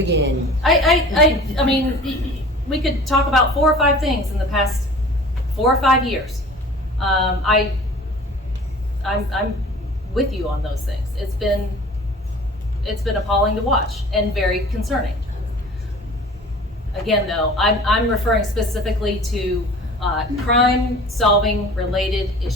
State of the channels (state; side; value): normal; both; correlation 0.44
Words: games begin. I mean, we could talk about 4 or 5 things in the past 4 or 5 years. I'm with you on those things. It's been appalling to watch and very concerning. Again, though, I'm referring specifically to crime-solving related